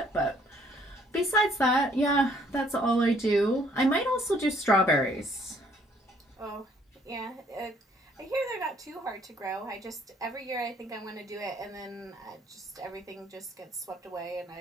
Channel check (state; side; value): normal; both; correlation 0.63